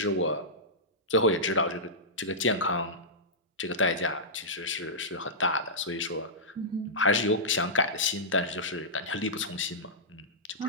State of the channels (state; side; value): normal; both; correlation -0.14